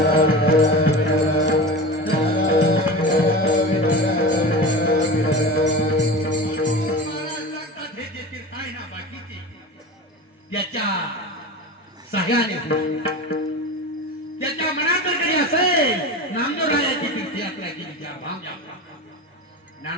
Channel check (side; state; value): both; normal; correlation 0.30